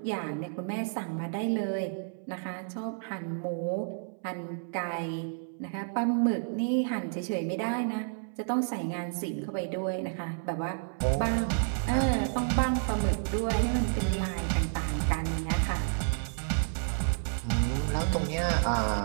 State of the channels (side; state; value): left; silent; 58 dB below the other